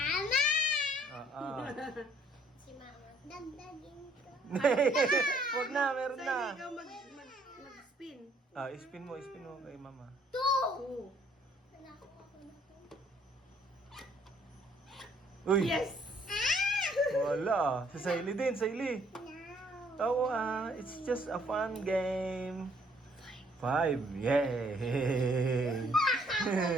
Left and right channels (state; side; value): normal; both; correlation 0.63